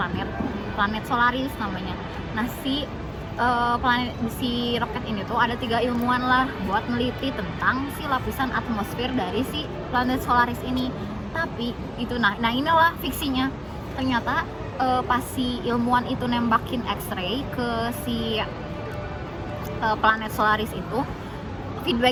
Solaris namanya. Nah si roket ini tuh ada 3 ilmuwan lah buat neliti tentang si lapisan atmosfer dari si planet Solaris ini. Tapi itu nah inilah fiksinya. Ternyata pas si ilmuwan itu nembakin X-ray ke si planet Solaris itu,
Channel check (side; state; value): both; identical; correlation 1.00